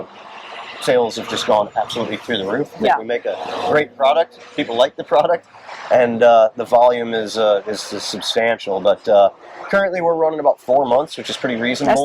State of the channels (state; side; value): identical; both; correlation 1.00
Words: sales have just gone absolutely through the roof. We make a great product, people like the product, and the volume is substantial. But currently we're running about 4 months, which is pretty